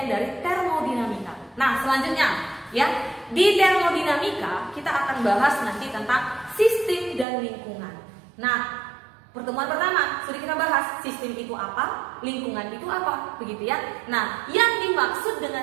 dari termodinamika. Nah, selanjutnya ya, di termodinamika kita akan bahas nanti tentang sistem dan lingkungan. Nah, pertemuan pertama sudah kita bahas sistem itu apa, lingkungan itu apa, begitu ya. Nah, yang dimaksud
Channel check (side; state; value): left; drops out; at 7.2 s